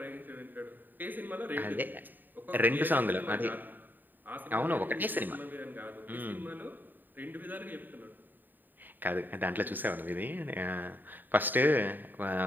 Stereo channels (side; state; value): left; late; 0.090 ms